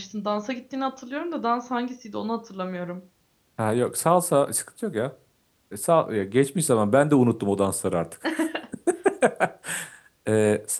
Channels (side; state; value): both; identical; correlation 1.00